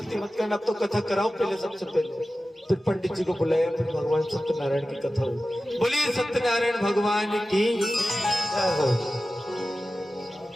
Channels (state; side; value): normal; both; correlation 0.95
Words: मत करना, अब तो कथा कराओ पहले, सबसे पहले। फिर पंडित जी को बुलाया, फिर भगवान सत्यनारायण की कथा हुई। बोलिए सत्यनारायण भगवान की जय हो।